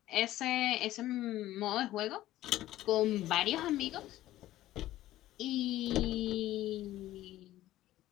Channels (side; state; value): right; quieter; 14.8 dB